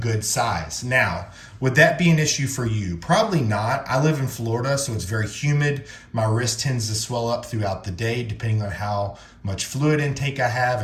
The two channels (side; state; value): both; identical; correlation 1.00